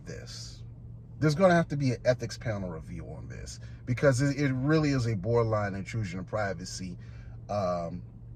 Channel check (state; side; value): identical; both; correlation 1.00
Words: this. There's going to have to be an ethics panel review on this because it really is a borderline intrusion of privacy when